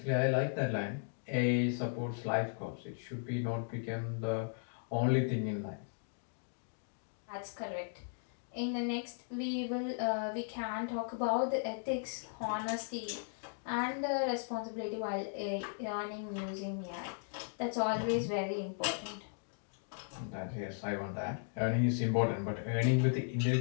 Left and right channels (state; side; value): silent; right; digital silence